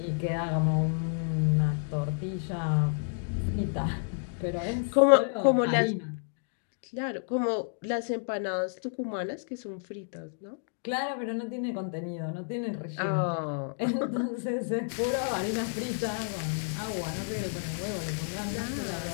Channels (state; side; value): silent; right; digital silence